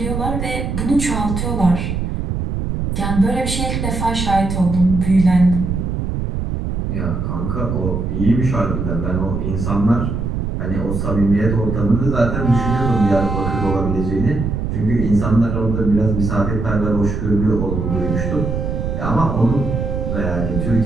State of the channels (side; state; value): right; noise; rumble, 2 dB below the sound